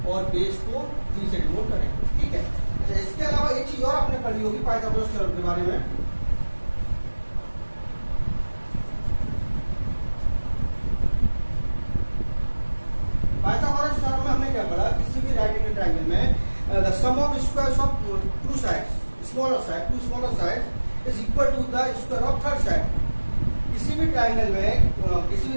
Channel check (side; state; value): both; inverted; correlation -1.00